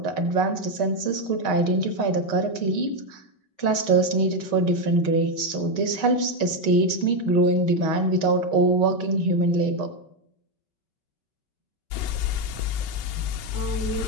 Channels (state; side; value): late; right; 5.3 ms